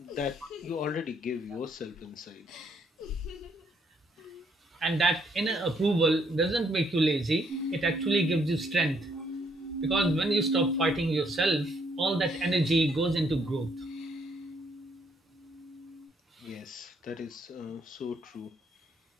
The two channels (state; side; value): normal; both; correlation 0.70